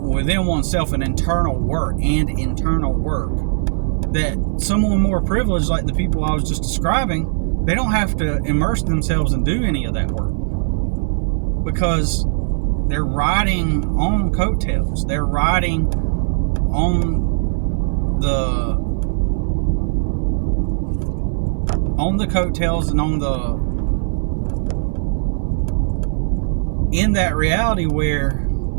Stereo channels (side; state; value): left; silent; 57 dB below the other